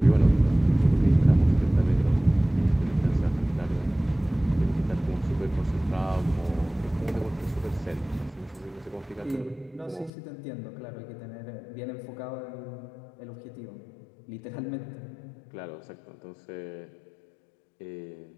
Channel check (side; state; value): right; drops out; at 10.1 s